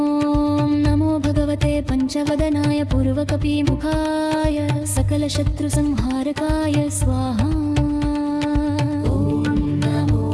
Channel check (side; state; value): both; identical; correlation 1.00